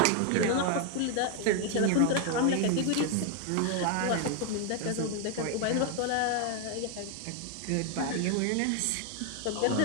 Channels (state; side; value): different; both; correlation 0.00